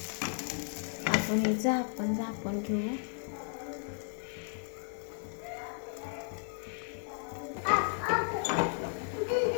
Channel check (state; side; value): silent; right; 55 dB below the other